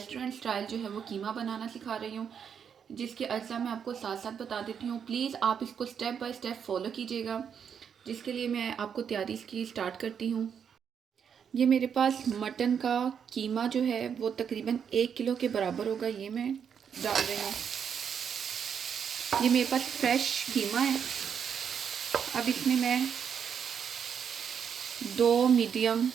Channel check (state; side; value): quieter; left; 7.5 dB